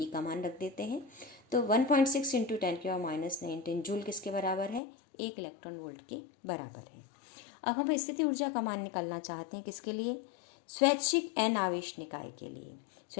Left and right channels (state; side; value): drops out; right; at 4.8 s